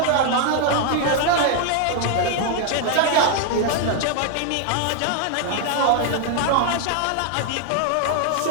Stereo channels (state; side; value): different; both; correlation 0.00